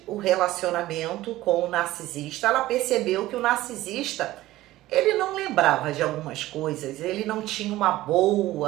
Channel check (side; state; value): left; quieter; 16.2 dB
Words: o relacionamento com o narcisista, ela percebeu que o narcisista, ele não lembrava de algumas coisas, ele não tinha uma